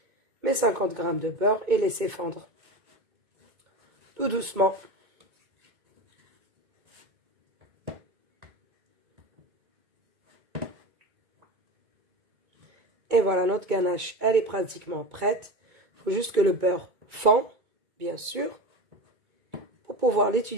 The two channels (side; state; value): left; late; 2.2 ms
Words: mes 50 grammes de beurre et laisser fondre. Tout doucement. Et voilà, notre ganache, elle est pratiquement prête. Il faut juste que le beurre fond, bien sûr, pour pouvoir